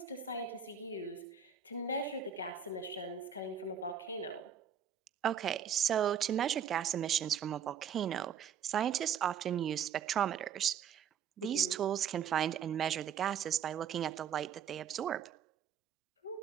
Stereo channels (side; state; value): left; quieter; 8.0 dB